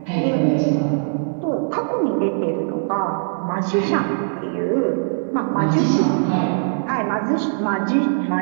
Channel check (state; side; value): silent; left; digital silence